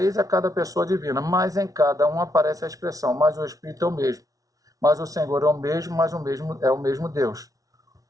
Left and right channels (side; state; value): left; late; 0.17 ms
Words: a cada pessoa divina, mas em cada um aparece a expressão, mas o Espírito é o mesmo. Mas o Senhor é o mesmo, mas o mesmo é o mesmo Deus.